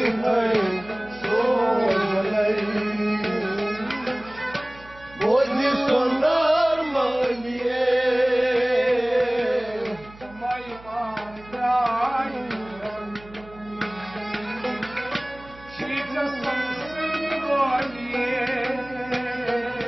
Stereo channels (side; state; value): right; noise; hum, 21 dB below the sound